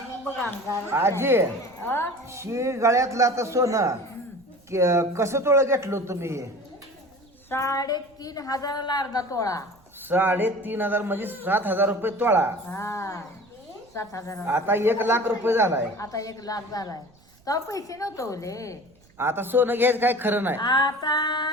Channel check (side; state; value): right; noise; rumble, 30 dB below the sound